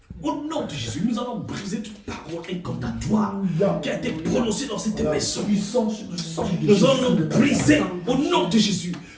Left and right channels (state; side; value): identical; both; correlation 1.00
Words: Au nom de Jésus, nous allons briser toute parole incantatoire qui a été prononcée dans cette maison. Nous allons briser au nom de Jésus